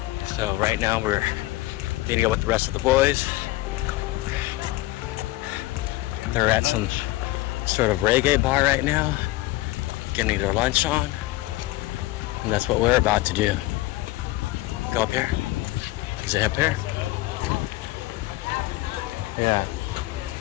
So right now we're meeting up with the rest of the boys. They're at some sort of reggae bar right now, getting their lunch on, and that's what we're about to do. Go up here. Is it up here? Yeah.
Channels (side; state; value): right; quieter; 18.5 dB